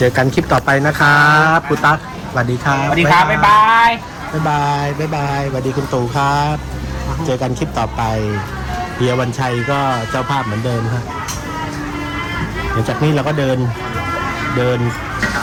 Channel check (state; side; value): identical; both; correlation 1.00